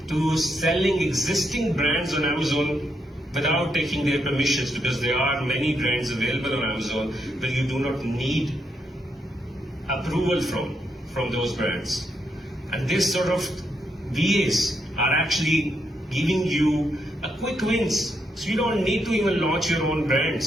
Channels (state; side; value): normal; both; correlation 0.79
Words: to selling existing brands on Amazon without taking their permissions, because there are many brands available on Amazon where you do not need approval from those brands. And this sort of VAs are actually giving you a quick wins. So you don't need to even launch your own